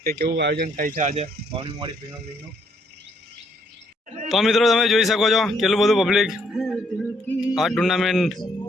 કે કેવું આયોજન થાય છે આજે વાવણી મોવાડી પ્રીમિયમ લીગનું। તો મિત્રો તમે જોઈ શકો છો કેટલું બધું પબ્લિક આ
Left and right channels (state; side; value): normal; both; correlation 0.70